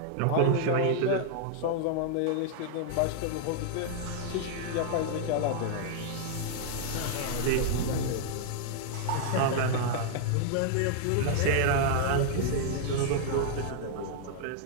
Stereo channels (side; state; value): both; different; correlation 0.00